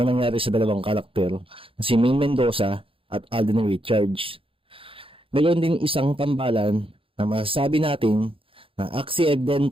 nangyari sa dalawang karakter na si Ming Mendoza at Alden Richards. Ngayon din isang tambalan na masasabi natin na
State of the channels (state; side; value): late; left; 0.26 ms